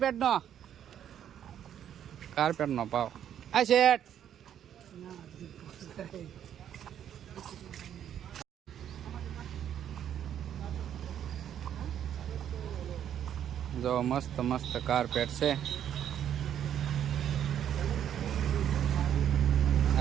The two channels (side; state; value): left; quieter; 9.9 dB